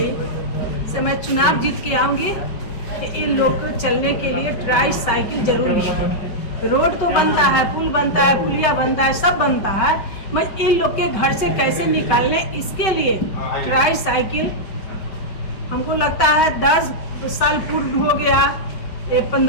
से मैं चुनाव जीत के आऊँगी कि इन लोग को चलने के लिए ट्राई साइकिल जरूरी है। रोड तो बनता है, पुल बनता है, पुलिया बनता है, सब बनता है, मैं इन लोग के घर से कैसे निकालने, इसके लिए ट्राई साइकिल हमको लगता है 10 साल पूर्ण हो गया,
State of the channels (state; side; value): late; right; 5.3 ms